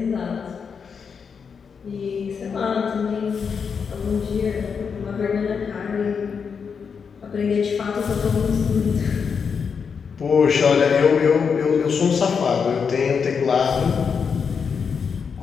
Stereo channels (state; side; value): quieter; right; 6.2 dB